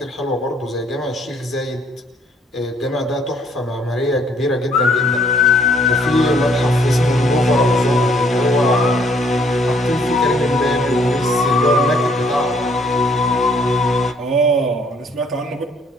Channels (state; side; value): normal; both; correlation 0.64